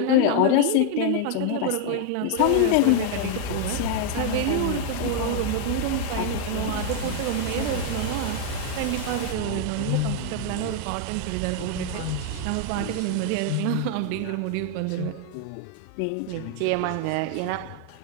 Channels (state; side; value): different; both; correlation 0.00